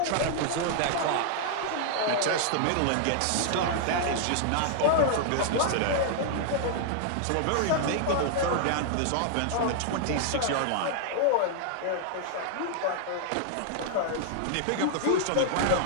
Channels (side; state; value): both; different; correlation -0.01